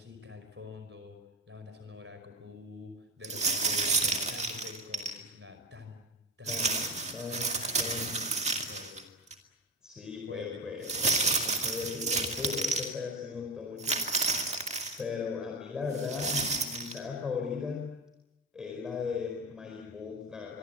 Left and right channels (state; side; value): normal; both; correlation 0.19